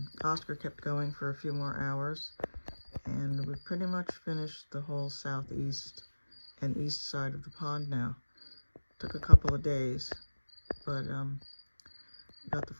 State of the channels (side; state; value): both; inverted; correlation -1.00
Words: Oscar kept going for a few more hours, and we pretty much finished the whole southeast and east side of the pond now. Took a couple of days, but got the